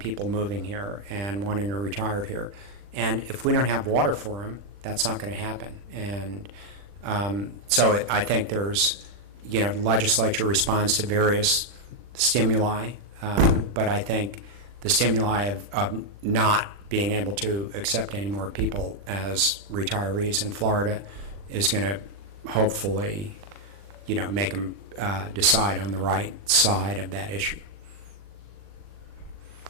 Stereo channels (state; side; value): late; left; 40 ms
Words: moving here and wanting to retire here. And if we don't have water for them, that's not going to happen. And so I think there's, the legislature responds to various stimuli, but I think the stimuli of not being able to accept any more people as retirees in Florida is going to hopefully, make them decide on the right side of that issue.